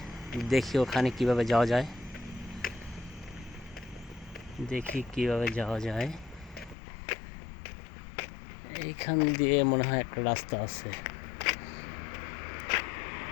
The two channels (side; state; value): right; drops out; at 6.8 s